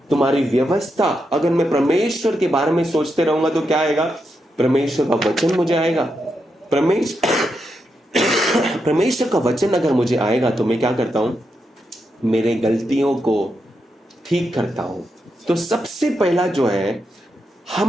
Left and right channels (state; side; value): normal; both; correlation 0.84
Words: तुम्हारी व्यवस्था, अगर मैं परमेश्वर के बारे में सोचते रहूंगा तो क्या आएगा? परमेश्वर का वचन मुझे आएगा। परमेश्वर का वचन अगर मुझे आएगा तो मैं क्या करता हूं? मेरे गलतियों को ठीक करता हूं। तो सबसे पहला जो है,